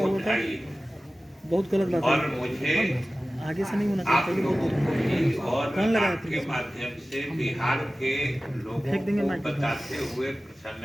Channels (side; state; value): both; normal; correlation 0.96